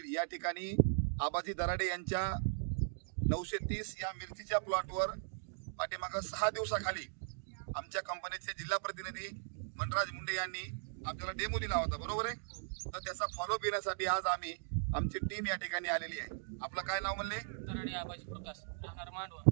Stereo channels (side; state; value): left; silent; digital silence